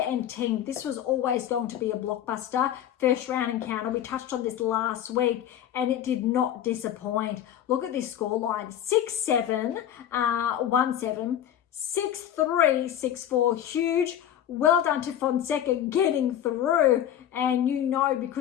and Ting. This was always going to be a blockbuster. First round encounter. We touched on this last week, and it did not disappoint. Look at this scoreline. 6-7, 1-7, 6-3, 6-4. Huge. Well done to Fonseca getting through, and you know,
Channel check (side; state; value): right; quieter; 10.6 dB